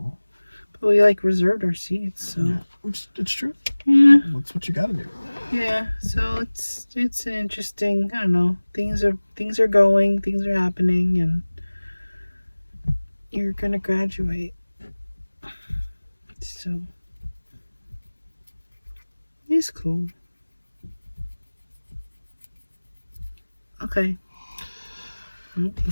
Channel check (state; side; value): inverted; both; correlation -1.00